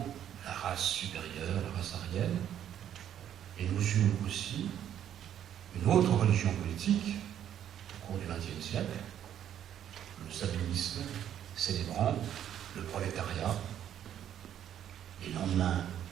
la race supérieure, la race aryenne. Et nous eûmes aussi une autre religion politique au cours du XXe siècle, le sabellisme, célébrant le prolétariat, les lendemains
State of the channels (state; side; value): quieter; left; 10.3 dB